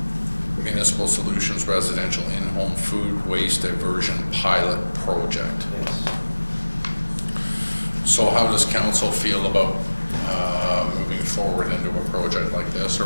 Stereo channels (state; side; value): inverted; both; correlation -1.00